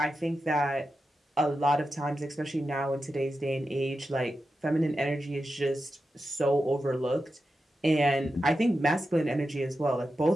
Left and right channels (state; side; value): normal; both; correlation 0.90